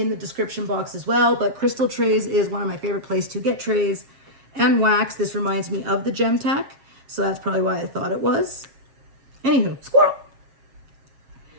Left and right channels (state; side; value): late; left; 7.4 ms